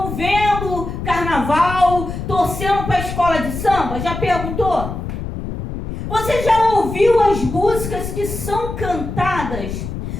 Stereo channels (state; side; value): noise; left; rumble, 6 dB below the sound